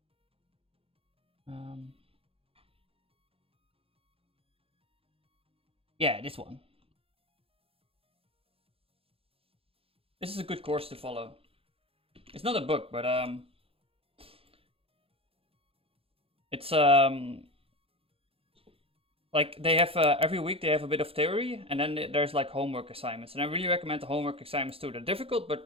Yeah, this one. This is a good course to follow. It's not a book, but it's like they have every week they have a bit of theory, and then there's like homework assignments, and I really recommend the homework assignments too. They're difficult,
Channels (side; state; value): left; late; 0.27 ms